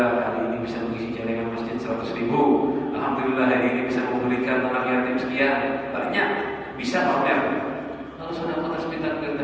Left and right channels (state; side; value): identical; both; correlation 1.00